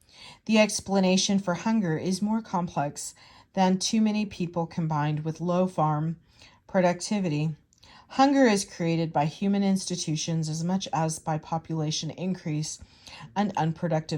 The explanation for hunger is more complex than too many people combined with low farm productivity. Hunger is created by human institutions as much as by population increase and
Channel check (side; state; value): both; identical; correlation 1.00